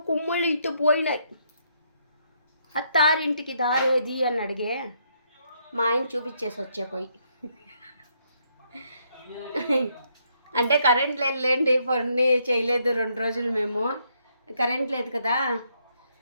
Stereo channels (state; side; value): inverted; both; correlation -0.73